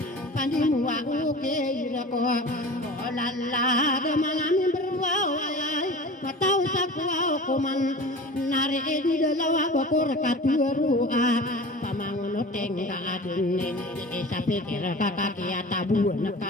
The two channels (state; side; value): normal; both; correlation 0.37